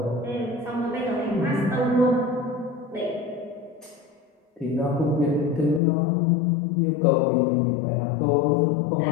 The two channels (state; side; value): drops out; right; at 5.8 s